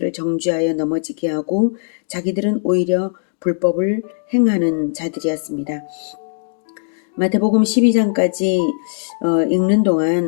정죄하여 넘어지게 하고 자기들은 오히려 불법을 행하는 자들이었습니다. 마태복음 12장까지 읽는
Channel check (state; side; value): silent; right; digital silence